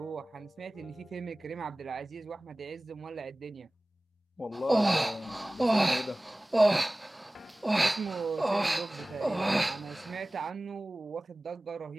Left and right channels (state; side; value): normal; both; correlation 0.98